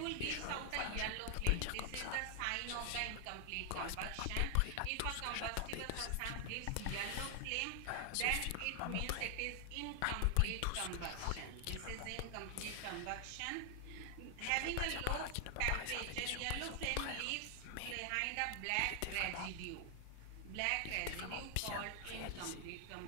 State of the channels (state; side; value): different; both; correlation 0.00